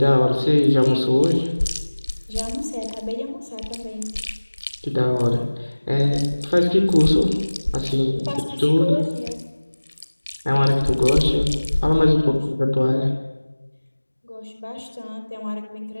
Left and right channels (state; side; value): inverted; both; correlation -1.00